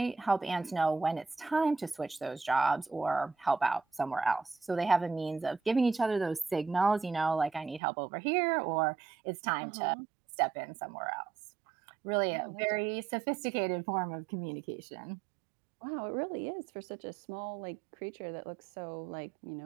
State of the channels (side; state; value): left; drops out; at 7.8 s